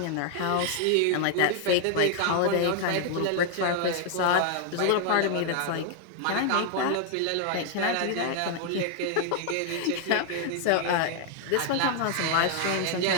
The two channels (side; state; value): both; different; correlation 0.00